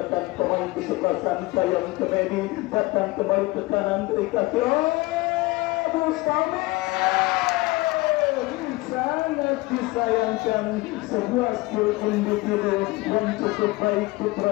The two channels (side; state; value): right; quieter; 21.8 dB